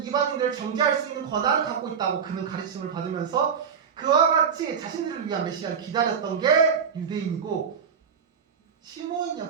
이방인들을 정죄할 수 있는 권한을 갖고 있다고 그는 가르침을 받으면서 그와 같이 자신들을 위한 메시아를 기다렸던 게 유대인이고 시므온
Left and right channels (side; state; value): left; quieter; 6.9 dB